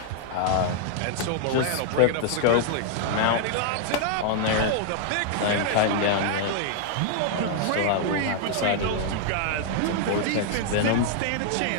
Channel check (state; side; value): different; both; correlation 0.00